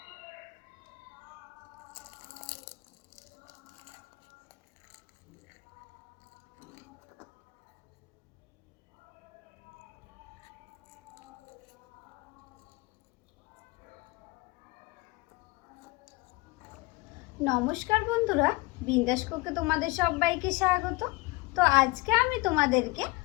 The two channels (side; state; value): right; quieter; 22.7 dB